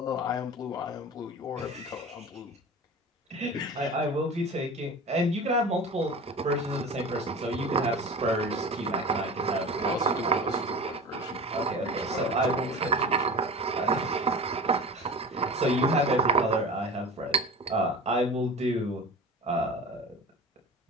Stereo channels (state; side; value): normal; both; correlation 0.34